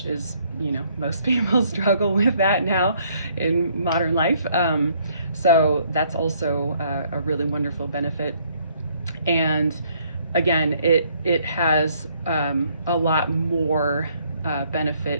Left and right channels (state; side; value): inverted; both; correlation -0.66